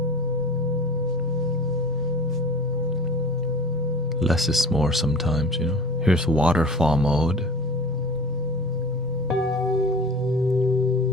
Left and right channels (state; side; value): normal; both; correlation 0.38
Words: Less is more sometimes, Here's waterfall mode.